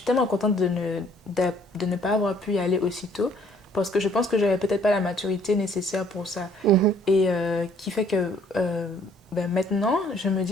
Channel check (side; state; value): both; normal; correlation 0.61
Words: tellement contente de ne pas avoir pu y aller aussitôt parce que je pense que j'avais peut-être pas la maturité nécessaire pour ça. Et qui fait que... maintenant, je me